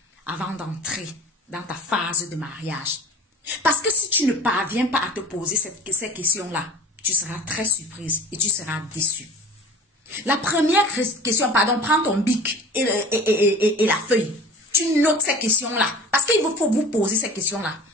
avant d'entrer dans ta phase de mariage. Parce que si tu ne parviens pas à te poser ces questions-là, tu seras très surprise et tu seras déçue. La première question, pardon, prends ton bic et la feuille. Tu notes ces questions-là. Parce qu'il faut vous poser ces questions-là.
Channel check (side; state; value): both; normal; correlation 0.41